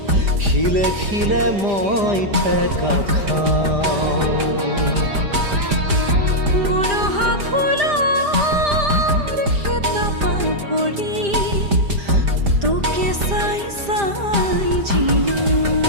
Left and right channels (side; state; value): left; late; 5.0 ms